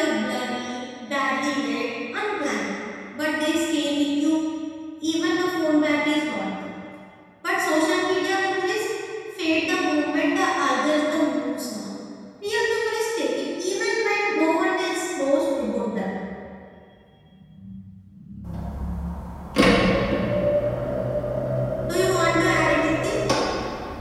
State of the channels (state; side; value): identical; both; correlation 1.00